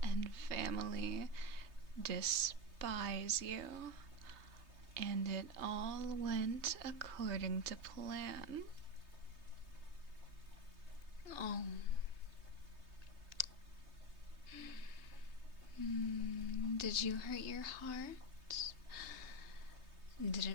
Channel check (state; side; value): late; left; 3.2 ms